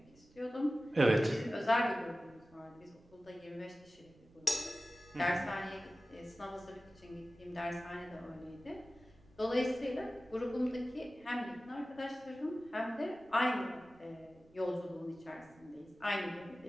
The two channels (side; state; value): right; noise; rumble, 27 dB below the sound